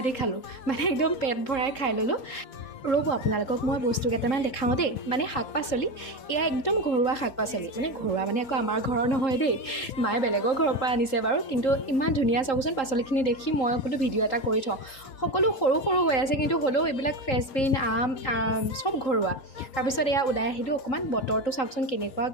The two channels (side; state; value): right; late; 3.8 ms